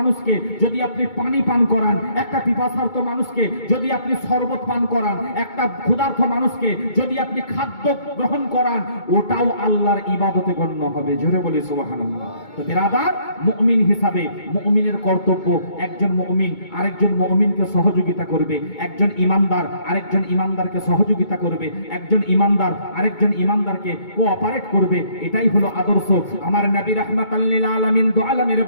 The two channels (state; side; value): late; right; 2.2 ms